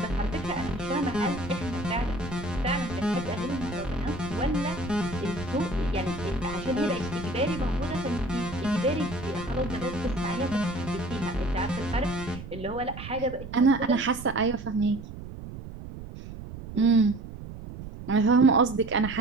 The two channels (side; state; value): right; noise; rumble, 11 dB below the sound